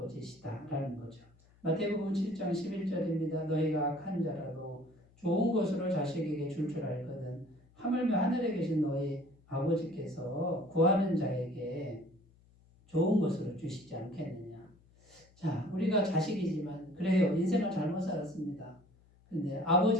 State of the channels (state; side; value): noise; left; hum, 29 dB below the sound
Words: 거죠. 마태복음 7장 11절입니다. 너희가 악한 자라도 좋은 것으로 자식에게 줄 알거든 하물며 하늘에 계신 너희 아버지께서 구하는 자에게 좋은 것으로 주시지 않겠느냐. 자, 우리가 자식이지만 그래요. 인생을 잘못 살았습니다. 근데